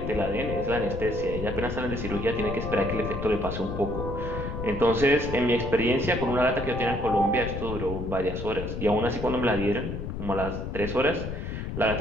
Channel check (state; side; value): noise; left; rumble, 5 dB below the sound